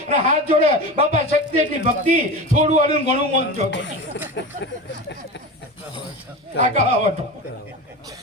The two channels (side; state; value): both; normal; correlation 0.27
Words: અને હાથ જોડે બાપા શક્તિ એટલી ભક્તિ થોડું આલું ઘણું મન જો આ કહવટો